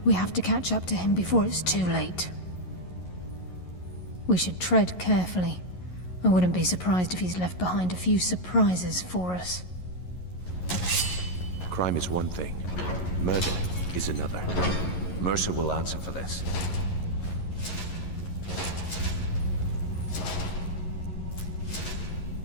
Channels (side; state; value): right; late; 11 ms